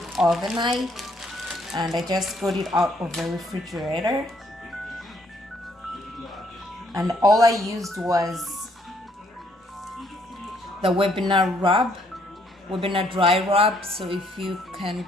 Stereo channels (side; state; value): both; normal; correlation 0.68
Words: overnight, and I just got it out of the refrigerator. And all I used was the webinar dry rub. So if you can